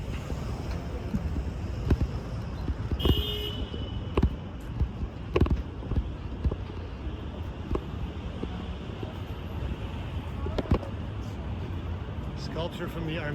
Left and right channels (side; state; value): both; identical; correlation 1.00